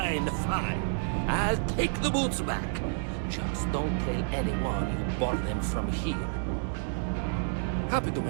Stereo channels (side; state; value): left; silent; 58 dB below the other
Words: fine. I'll take the boots back. Just don't tell anyone you bought them from here. Happy to